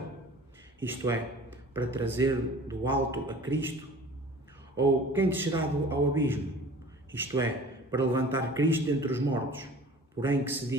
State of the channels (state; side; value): normal; both; correlation 0.44